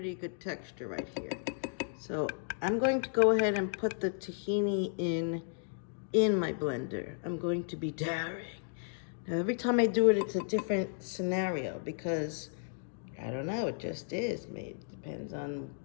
good texture right here. So I'm going to go ahead and put the tahini in my blender. I'm going to be daring. Now every time I do it, it's a different scenario because I don't know, it just is. Maybe it depends on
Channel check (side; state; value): right; silent; digital silence